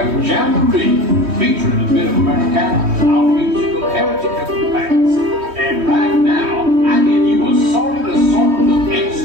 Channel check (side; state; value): left; late; 3.2 ms